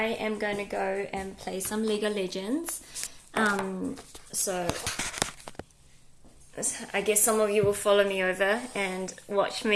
am going to go and play some Lego Legends. So I guess some of you will follow me over and watch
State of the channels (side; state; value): both; identical; correlation 1.00